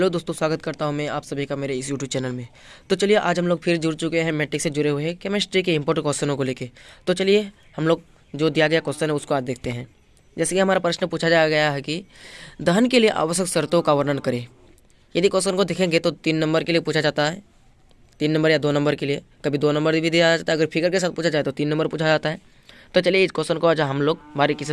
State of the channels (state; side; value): identical; both; correlation 1.00